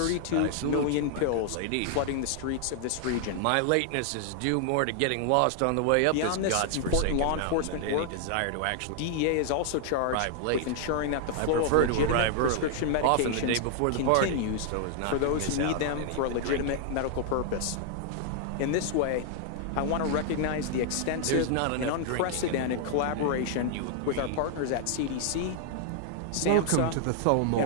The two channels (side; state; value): both; different; correlation 0.00